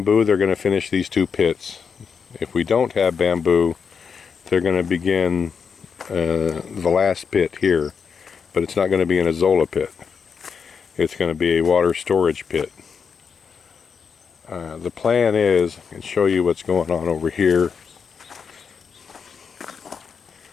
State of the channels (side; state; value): right; quieter; 6.2 dB